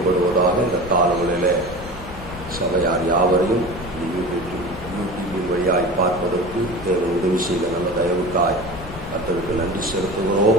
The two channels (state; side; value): noise; left; rumble, 13 dB below the sound